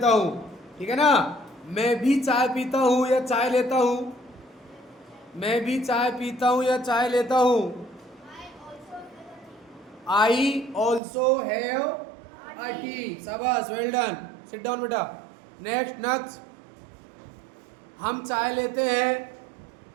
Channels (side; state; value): left; drops out; at 11.0 s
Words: हूँ। ठीक है ना? मैं भी चाय पीता हूँ या चाय लेता हूँ। मैं भी चाय पीता हूँ या चाय लेता हूँ। I also have a tea. शाबाश, वेल डन। सिट डाउन बेटा। नेक्स्ट, हम चाय लेते हैं।